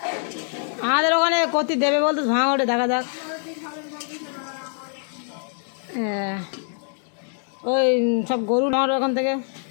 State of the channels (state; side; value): silent; right; 63 dB below the other